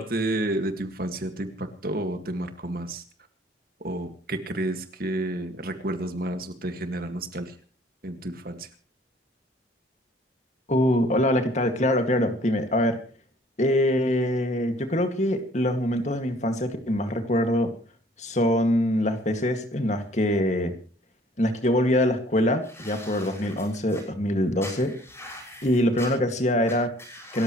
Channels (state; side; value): normal; both; correlation 0.57